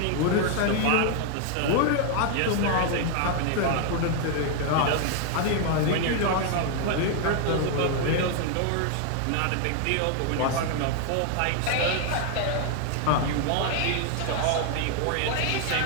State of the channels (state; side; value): different; both; correlation 0.00